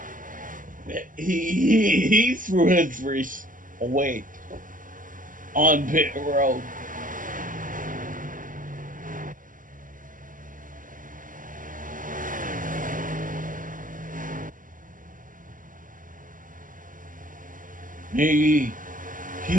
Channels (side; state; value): left; late; 0.39 ms